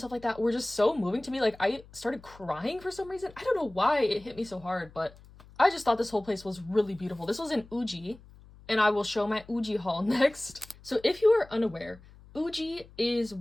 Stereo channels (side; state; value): left; noise; hum, 23 dB below the sound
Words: like that were just so moving to me. Like I started crying for some reason. I don't know why it hit me so hard, but I just thought this whole place was really beautiful. This was in Uji, and I will show my Uji haul next. So if you are unaware, Uji is